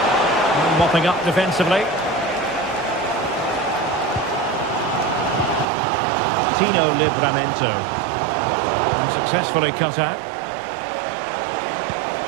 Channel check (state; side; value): drops out; left; at 5.7 s